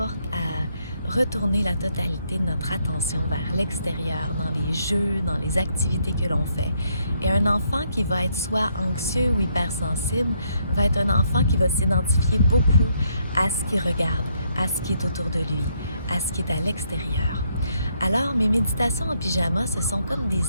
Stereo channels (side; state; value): both; inverted; correlation -0.73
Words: à retourner la totalité de notre attention vers l'extérieur, dans les jeux, dans les activités que l'on fait. Et un enfant qui va être soit anxieux ou hypersensible va être un enfant qui va s'identifier beaucoup à ce qu'il regarde, à ce qui est autour de lui, à ce qui est à l'extérieur. Alors, mes méditations en pyjama, ce sont comme des